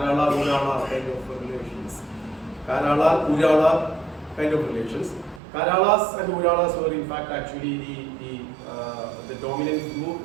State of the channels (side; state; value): left; drops out; at 5.4 s